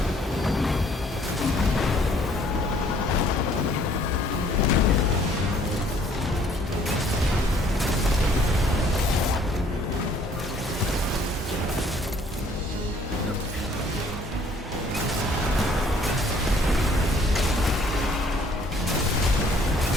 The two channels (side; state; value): both; normal; correlation 0.60